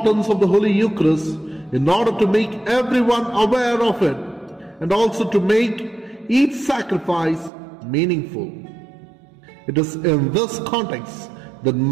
of the Holy Eucharist in order to make everyone aware of it and also to make each sacrifice meaningful. It is in this context that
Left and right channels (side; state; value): left; drops out; at 7.5 s